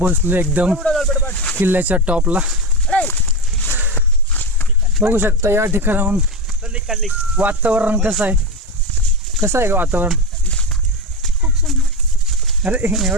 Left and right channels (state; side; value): normal; both; correlation 0.17